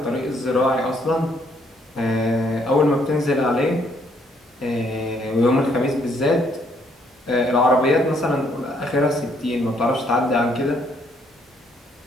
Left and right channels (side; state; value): both; normal; correlation 0.68